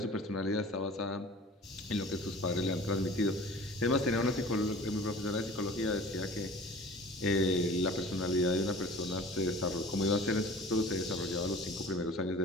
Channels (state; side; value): normal; both; correlation 0.43